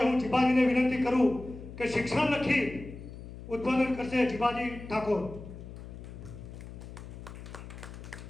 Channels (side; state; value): left; noise; hum, 13 dB below the sound